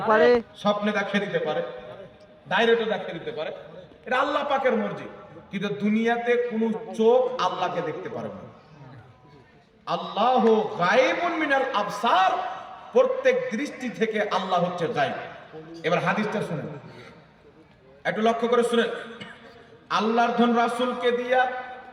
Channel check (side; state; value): both; identical; correlation 1.00